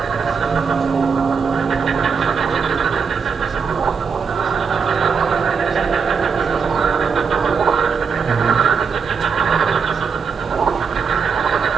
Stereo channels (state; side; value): quieter; left; 5.8 dB